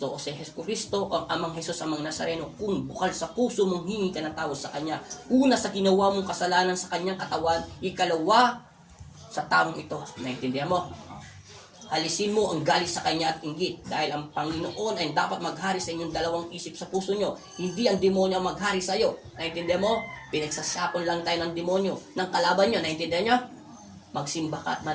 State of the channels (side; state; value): both; identical; correlation 1.00